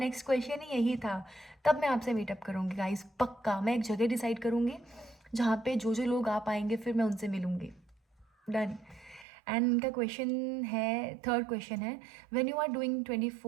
क्वेश्चन ही यही था। तब मैं आपसे मीटअप करूँगी गाइस, पक्का। मैं एक जगह डिसाइड करूँगी जहाँ पे जो जो लोग आ पाएंगे फिर मैं उनसे मिलूँगी। डन। एंड इनका क्वेश्चन है, थर्ड क्वेश्चन है, when you are doing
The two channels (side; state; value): left; drops out; at 9.2 s